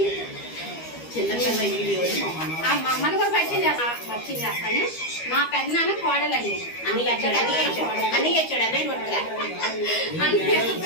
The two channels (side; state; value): right; late; 13 ms